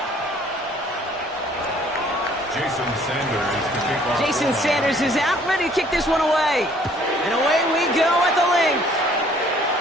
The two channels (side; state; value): both; normal; correlation 0.59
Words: Jason Sanders is out, ready to kick this one away. And away we go at the link.